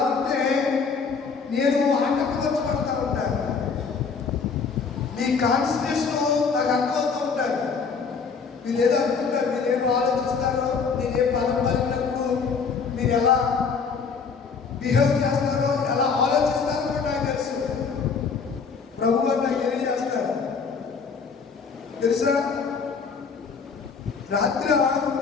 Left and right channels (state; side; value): quieter; right; 5.4 dB